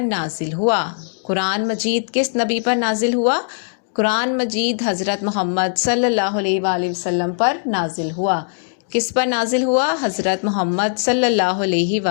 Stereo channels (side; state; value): right; silent; digital silence